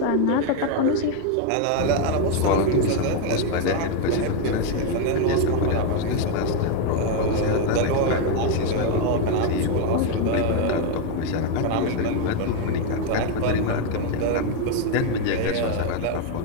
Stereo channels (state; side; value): different; both; correlation 0.01